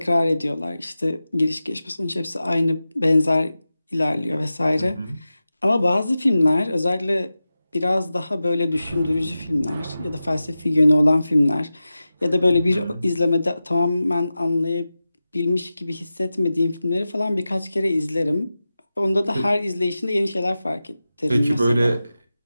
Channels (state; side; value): inverted; both; correlation -0.94